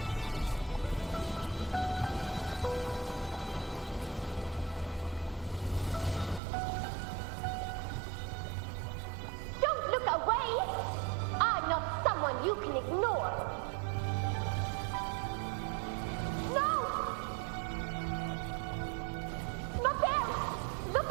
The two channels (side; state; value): left; drops out; at 6.4 s